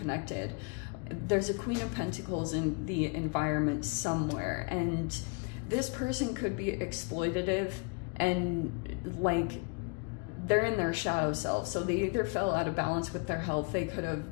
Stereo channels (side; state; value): right; quieter; 33.5 dB